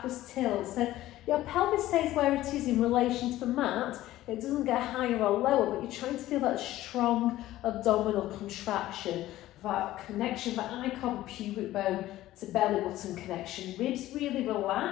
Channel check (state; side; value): quieter; right; 15.2 dB